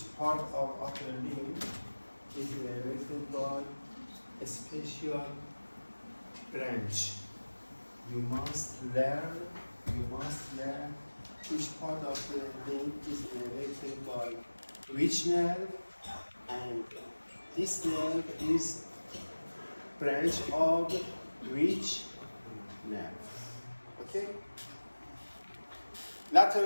part of upper limb is innervated by a special branch. You must learn each part of the limb is innervated by which nerve, and this nerve is branch of which nerve. Okay?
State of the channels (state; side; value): inverted; both; correlation -1.00